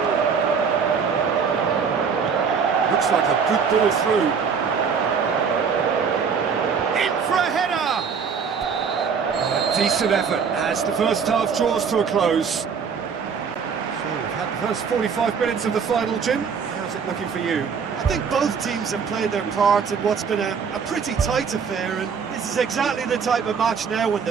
Looks like a good ball through. In for a header! A decent effort as the first half draws to a close. So we've had the first 45 minutes of the final, Jim. How's it looking for you? I think both teams have played their part in what's been a pretty tight affair, and this is exactly the type of match now when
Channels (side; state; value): left; quieter; 6.2 dB